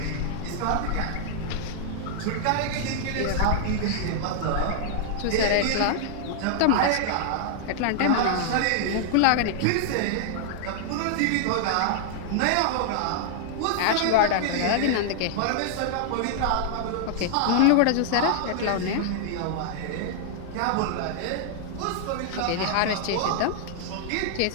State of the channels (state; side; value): different; both; correlation -0.01